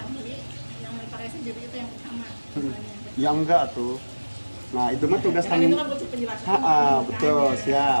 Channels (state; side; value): inverted; both; correlation -1.00